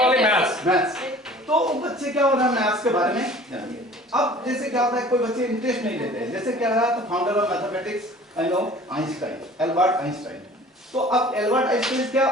maths. तो बच्चे क्या हो रहा है मैथ्स के बारे में जानिए। अब जैसे क्या होता है कोई बच्चे इंटरेस्ट नहीं लेते हैं, जैसे क्या रहा तो founder of mathematics I know Einstein, Albert Einstein. तो अब एल्बर्ट आइंस्टाइन क्या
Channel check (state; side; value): normal; both; correlation 0.47